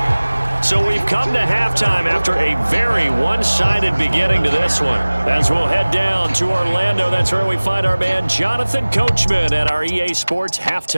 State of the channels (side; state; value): both; inverted; correlation -1.00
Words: So we've come to halftime after a very one-sided beginning to this one. As we'll head down to Orlando, that's where we find our man Jonathan Coachman at our EA Sports